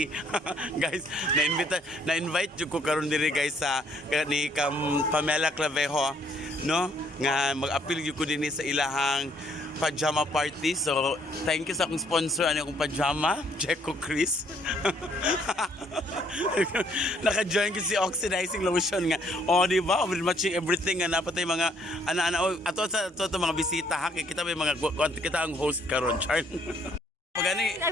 Guys, na-invite ko karon diri guys sa ni Pamela Clavejo, no? Nga mag-appeal ko din sa ilahang Pajama Party. So, thank you sa akong sponsor. Ano akong pajama? Checo Chris. Naka-join ko si oxidizing lotion nga. O, di ba? We're matching everything nga. Napatay mga ana-ana. Ato sa mga bisita ha. Kita may mga kita ang host karon, Char. Pagani.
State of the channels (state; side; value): normal; both; correlation 0.66